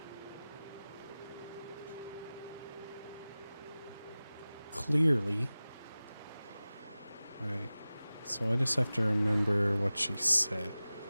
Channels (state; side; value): inverted; both; correlation -0.97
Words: Clearly. Alright. So I just have to remember what she said.